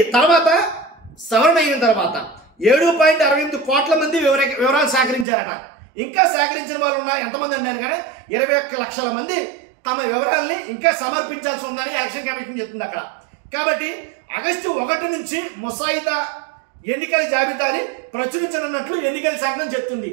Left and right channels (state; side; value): drops out; left; at 5.2 s